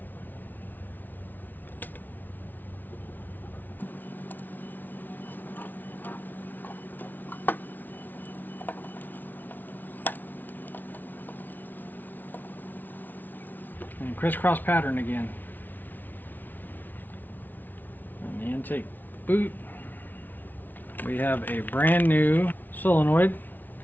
crisscross pattern again. On the intake boot, we have a brand new solenoid.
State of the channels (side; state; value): right; late; 0.085 ms